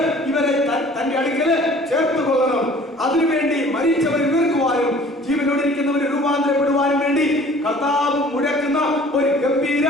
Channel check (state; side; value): normal; both; correlation 0.50